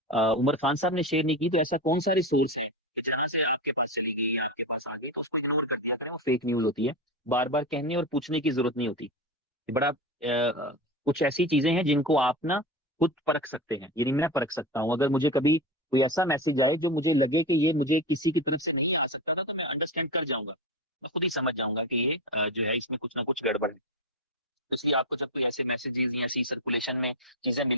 उमर खान साहब ने शेयर नहीं की, तो ऐसा कौन सा रिसोर्स है कि जहां से आपके पास चली गई या आपके पास आ गई तो उसको इग्नोर कर दिया करें, वो फेक न्यूज होती है। बार बार कहने और पूछने की जरूरत नहीं होती। ये बड़ा कुछ ऐसी चीजें हैं जिनको आप ना खुद परख सकते हैं, यानी मैं परख सकता हूँ। अगर मुझे कभी कोई ऐसा मैसेज आए जो मुझे लगे कि ये मुझे किसी की तरफ से नहीं आ सकता था, तो मैं अंडरस्टैंड कर जाऊंगा, मैं खुद ही समझ जाऊंगा कि ये जो है इसमें कुछ ना कुछ गड़बड़ है। इसलिए आपको जब कोई ऐसे मैसेजेस या ऐसी सर्कुलेशन में चीजें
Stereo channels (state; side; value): normal; both; correlation 0.21